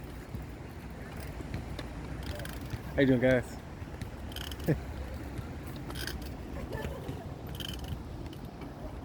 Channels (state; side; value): identical; both; correlation 1.00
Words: How you doing, guys?